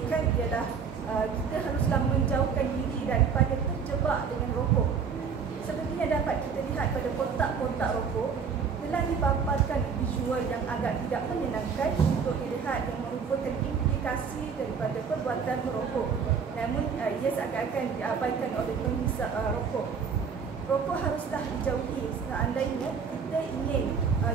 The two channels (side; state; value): left; quieter; 6.2 dB